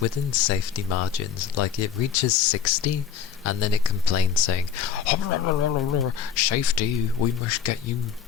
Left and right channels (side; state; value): right; quieter; 7.9 dB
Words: within safety margins. Like, it reaches 60, and then it complains saying, safety, we must get you